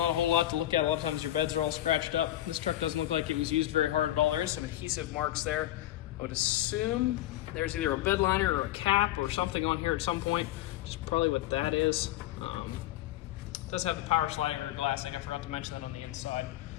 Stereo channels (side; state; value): right; quieter; 14.4 dB